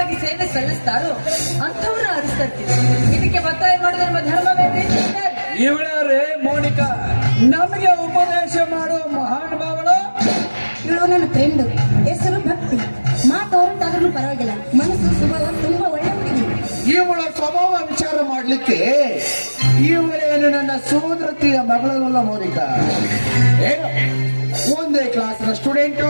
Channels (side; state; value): both; inverted; correlation -1.00